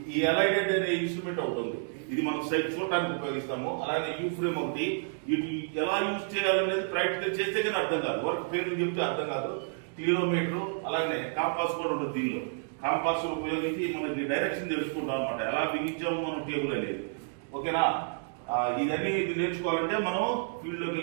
ఈ అలైడెడ్ అనే ఇన్స్ట్రుమెంట్ ఒకటి ఉంది. ఇది మనం సైట్ చూడటానికి ఉపయోగిస్తాము. అలాగే యూ ఫ్రేమ్ ఒకటి. ఇది ఎలా యూజ్ చేయాలనేది ప్రాక్టికల్ చేస్తే కానీ అర్థం కాదు. వర్క్ పేర్లు చెప్తే అర్థం కాదు. కిలోమీటర్, అలాగే కాంపాస్ కూడా ఉంటుంది. దీనిలో కాంపాస్ ఉపయోగించి మనకి డైరెక్షన్ తెలుసుకుంటాం అనమాట, ఎలా బిగించాము మనం టేబుల్ అనేది. ఓకేనా? ఇదన్నీ నేర్చుకోవాలంటే మనం ఫీల్డ్ లోకి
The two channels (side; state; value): left; silent; digital silence